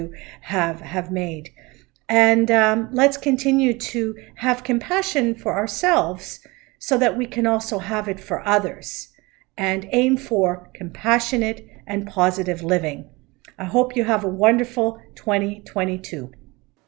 have made. And let's continue to have compassion for ourselves so that we can also have it for others and aim for compassionate and positive living. I hope you have a wonderful 2022.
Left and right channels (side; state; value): left; quieter; 23.9 dB